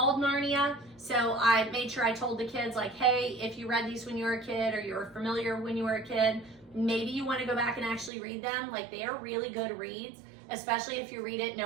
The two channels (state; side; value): drops out; left; at 8.1 s